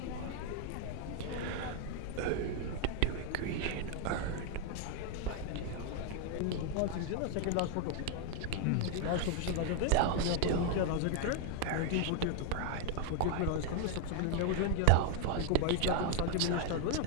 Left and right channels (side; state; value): both; different; correlation 0.00